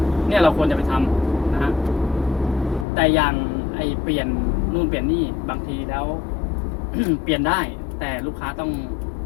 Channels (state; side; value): drops out; right; at 2.9 s